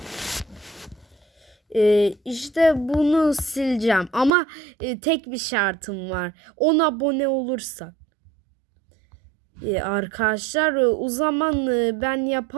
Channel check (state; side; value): drops out; left; at 4.3 s